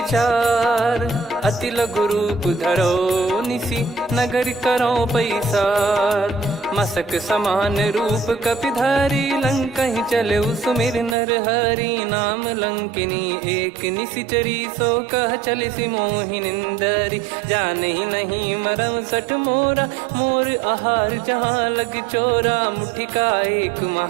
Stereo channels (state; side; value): drops out; left; at 11.2 s